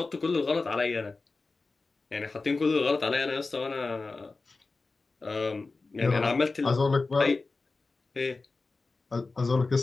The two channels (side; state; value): right; quieter; 3.8 dB